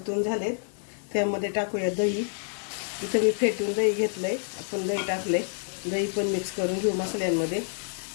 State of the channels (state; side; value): silent; right; 59 dB below the other